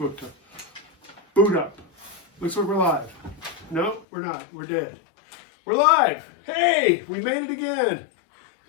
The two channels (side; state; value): right; drops out; at 4.0 s